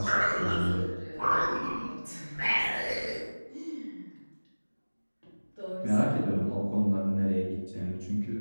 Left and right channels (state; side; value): inverted; both; correlation -1.00